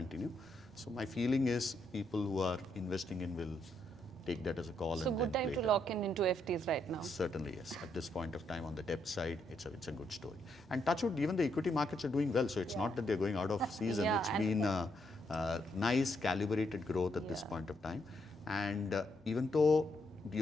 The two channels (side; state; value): both; normal; correlation 0.77